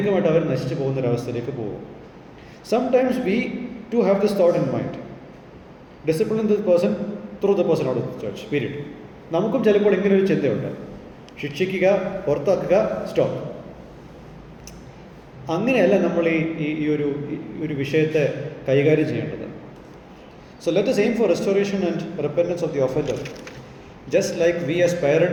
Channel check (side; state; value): both; identical; correlation 1.00